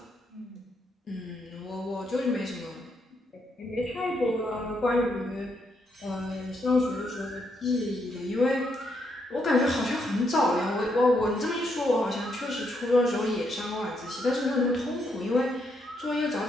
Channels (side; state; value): both; normal; correlation 0.77